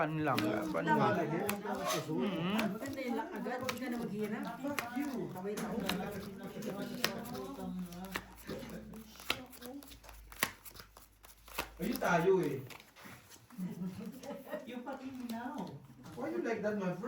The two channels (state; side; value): identical; both; correlation 1.00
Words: lang. Laban lang. Agad, hindi ka na maghirap. Ayun tayo eh. Yung pati now. Why you like that, my